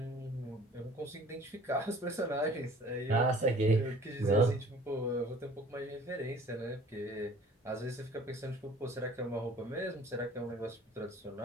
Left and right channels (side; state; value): both; normal; correlation 0.50